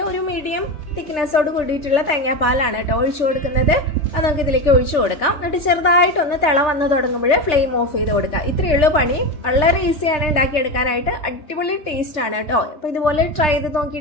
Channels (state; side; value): late; right; 3.4 ms